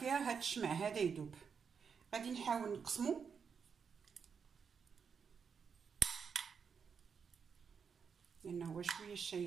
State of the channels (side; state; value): left; quieter; 6.3 dB